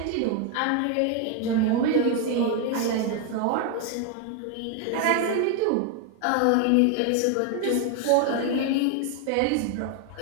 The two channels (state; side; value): different; both; correlation 0.01